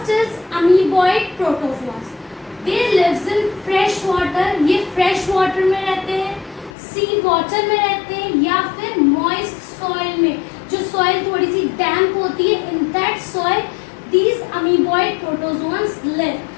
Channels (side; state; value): right; drops out; at 6.7 s